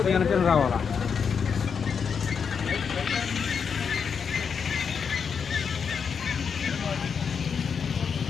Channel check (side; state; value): right; quieter; 6.4 dB